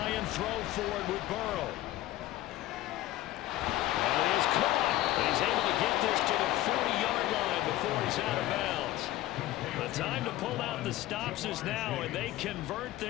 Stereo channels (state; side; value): quieter; right; 15.6 dB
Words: and throw forward with Burrow. And it is caught. And he's able to get this to the 40-yard line before he's out of bounds. The time to pull out the stops is now, and they convert